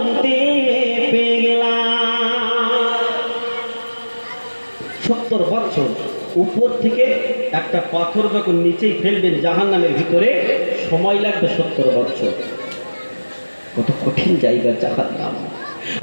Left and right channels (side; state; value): both; inverted; correlation -1.00